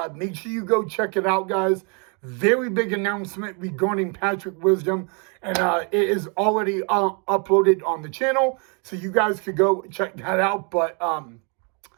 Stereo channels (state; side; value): quieter; left; 35.9 dB